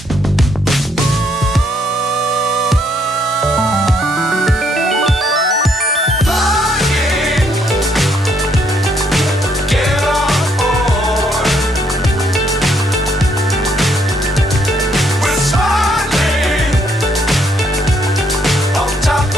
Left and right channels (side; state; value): both; normal; correlation 0.71